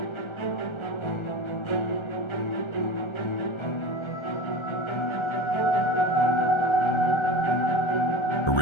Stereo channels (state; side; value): late; right; 1.3 ms